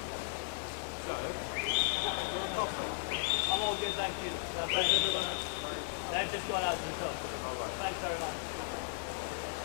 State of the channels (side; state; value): right; silent; digital silence